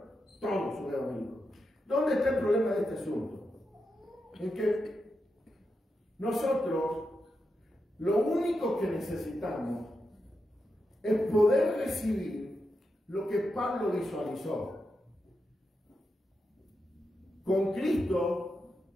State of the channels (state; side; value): normal; both; correlation 0.87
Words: Todos son evangélicos. ¿Dónde está el problema de este asunto? En que nosotros lo único que necesitamos es poder recibir lo que Pablo visualizó. Con Cristo